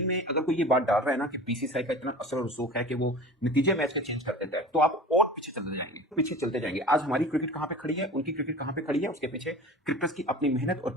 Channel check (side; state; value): both; normal; correlation 0.38